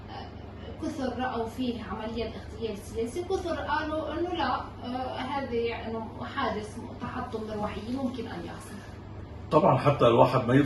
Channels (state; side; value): identical; both; correlation 1.00